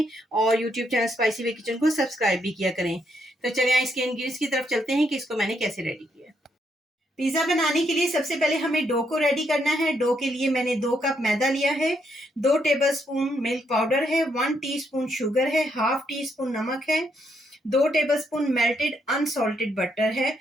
और YouTube channel spicy way kitchen को सब्सक्राइब भी किया करें। तो चलिए इसके इंग्रेडिएंट्स की तरफ चलते हैं कि इसको मैंने कैसे रेडी किया। पिज़्ज़ा बनाने के लिए सबसे पहले हमें डो को रेडी करना है। डो के लिए मैंने 2 कप मैदा लिया है, 2 टेबलस्पून मिल्क पाउडर है, 1 टीस्पून शुगर है, हाफ टी स्पून नमक है, 2 टेबलस्पून मेल्टेड अनसॉल्टेड बटर है।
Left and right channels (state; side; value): normal; both; correlation 0.76